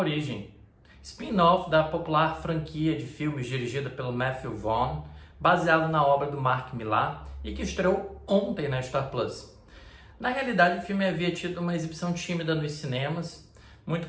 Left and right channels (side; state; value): both; identical; correlation 1.00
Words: spin-off da popular franquia de filmes dirigida pelo Matthew Vaughn, baseado na obra do Mark Millar e que estreou ontem na Star Plus. Na realidade, o filme havia tido uma exibição tímida nos cinemas, muito